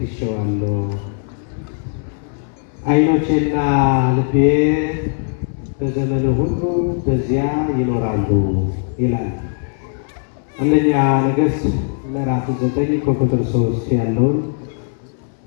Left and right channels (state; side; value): silent; right; 67 dB below the other